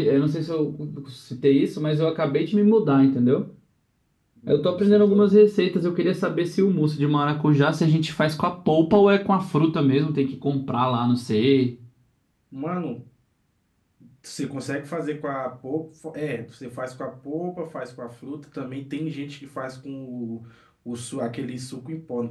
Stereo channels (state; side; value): identical; both; correlation 1.00